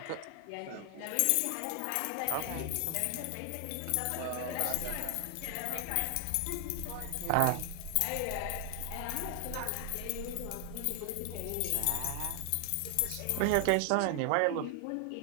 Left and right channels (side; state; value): both; different; correlation 0.00